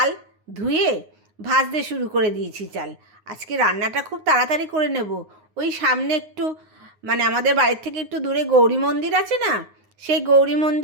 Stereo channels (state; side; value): late; left; 9.6 ms